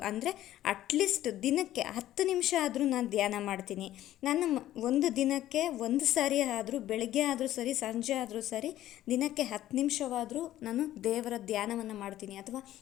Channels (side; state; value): right; quieter; 13.5 dB